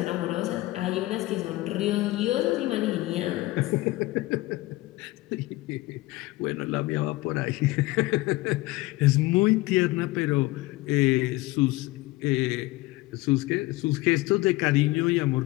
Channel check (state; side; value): quieter; right; 19.7 dB